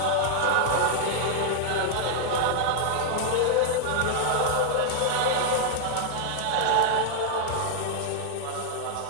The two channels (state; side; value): different; both; correlation -0.01